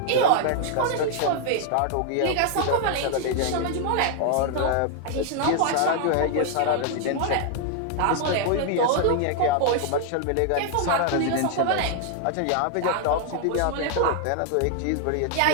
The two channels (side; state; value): both; different; correlation 0.00